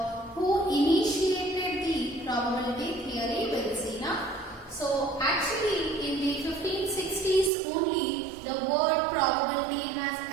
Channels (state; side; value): drops out; left; at 7.5 s